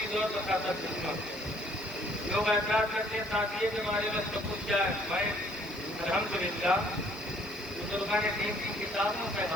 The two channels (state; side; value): noise; left; hiss, 24 dB below the sound